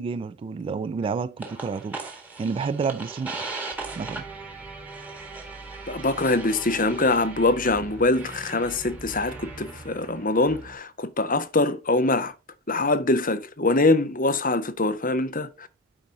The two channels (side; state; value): both; normal; correlation 0.17